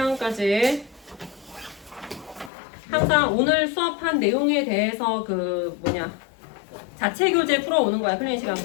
항상 오늘 수업한 내용에 대해서 자체 교재 풀어오는 거야. 클리닉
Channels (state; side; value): drops out; right; at 2.5 s